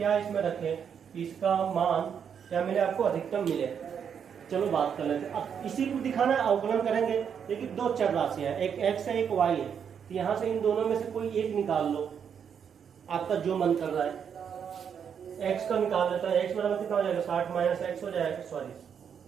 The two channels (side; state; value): left; quieter; 7.6 dB